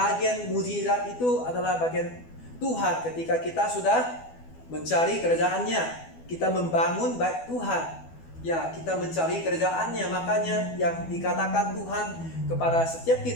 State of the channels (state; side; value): late; right; 12 ms